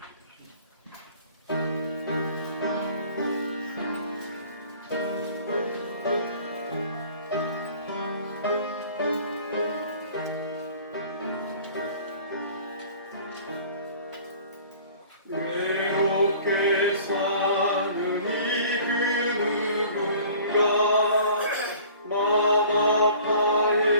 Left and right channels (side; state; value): both; inverted; correlation -0.48